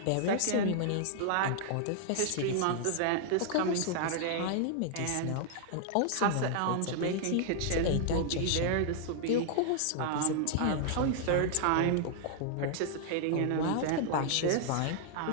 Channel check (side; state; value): both; different; correlation -0.01